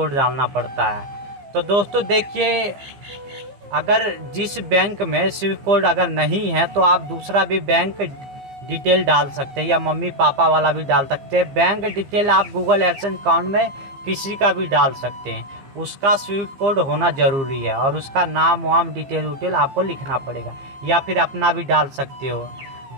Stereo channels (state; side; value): late; left; 15 ms